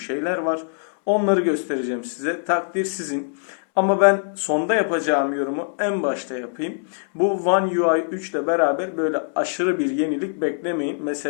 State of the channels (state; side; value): silent; right; 64 dB below the other